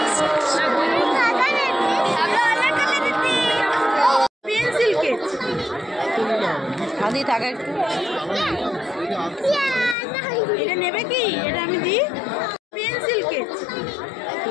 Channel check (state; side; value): drops out; right; at 10.0 s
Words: পেন্সিল কেক হাদি থাকে একটু। এটা নেবে কি? এটা আমি দিই। পেন্সিল কেক